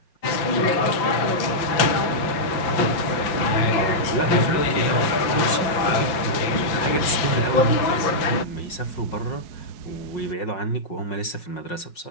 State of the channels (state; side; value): late; right; 5.9 ms